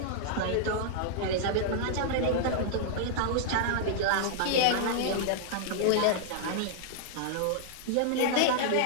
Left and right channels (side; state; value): both; different; correlation -0.01